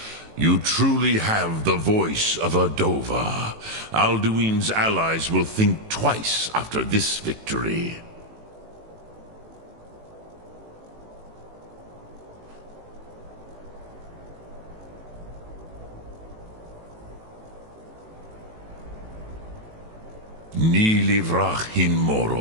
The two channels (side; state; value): left; late; 18 ms